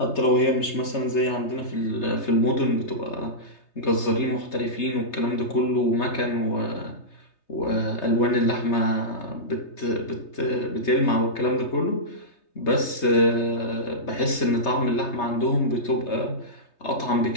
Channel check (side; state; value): right; late; 3.3 ms